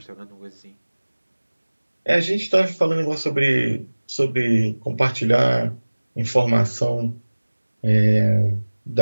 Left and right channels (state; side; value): inverted; both; correlation -1.00